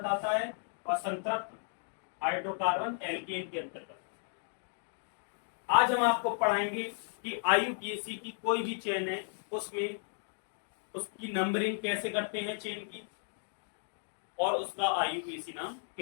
आता है और संतृप्त हाइड्रोकार्बन एल्केन के अंतर्गत। आज हम आपको पढ़ाएंगे कि आईयूपीएसी की कोई भी चेन है उसमें उसकी नंबरिंग कैसे करते हैं चेन की, और उसका आईयूपीएसी नाम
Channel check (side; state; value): right; silent; digital silence